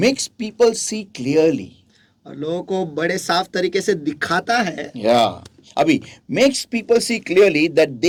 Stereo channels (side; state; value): both; identical; correlation 1.00